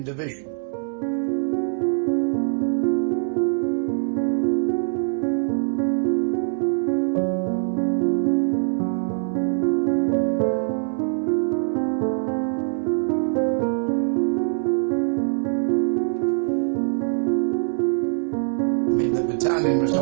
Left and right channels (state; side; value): silent; left; digital silence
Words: Division. The battalion was